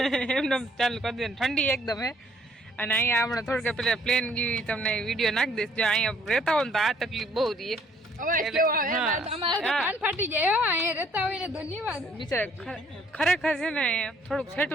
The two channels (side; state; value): both; normal; correlation 0.63